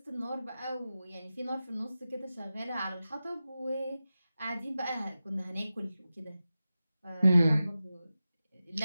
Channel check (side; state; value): both; inverted; correlation -0.94